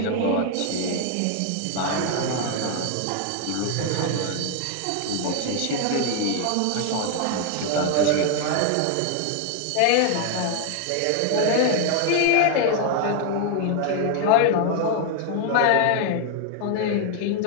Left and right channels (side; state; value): both; different; correlation 0.00